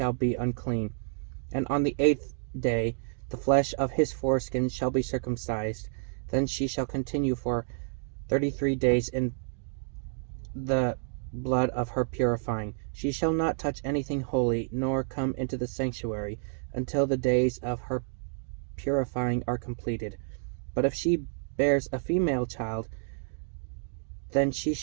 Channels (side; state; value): left; silent; digital silence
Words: be unclean. And on the 8th day the flesh of his foreskin shall be circumcised. Then she shall continue for 33 days in the blood of her purifying. She shall not touch anything holy, nor come into the sanctuary, until the days of her purifying are completed. But if she bears a female child, then she